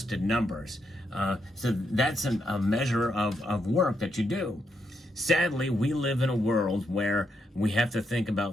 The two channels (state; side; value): normal; both; correlation 0.79